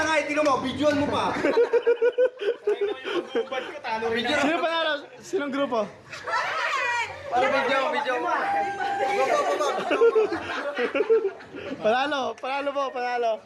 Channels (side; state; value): both; identical; correlation 1.00